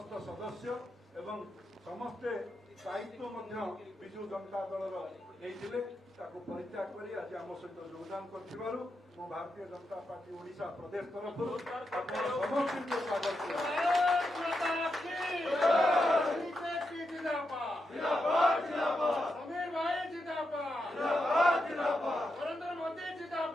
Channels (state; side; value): normal; both; correlation 0.85